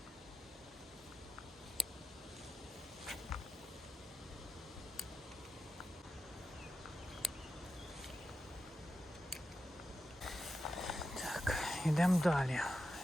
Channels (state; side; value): normal; both; correlation 0.89